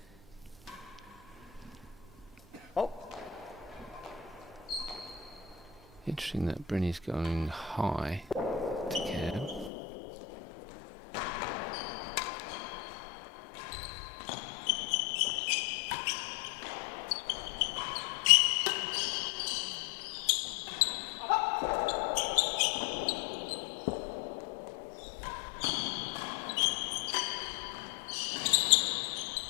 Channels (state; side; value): drops out; right; at 9.7 s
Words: Oh. Interesting that Bryn is going high to Cam.